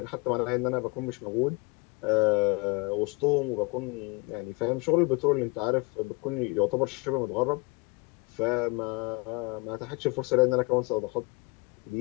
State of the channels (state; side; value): quieter; right; 28.2 dB